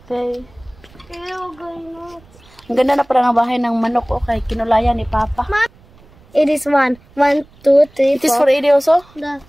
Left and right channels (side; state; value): right; noise; rumble, 27 dB below the sound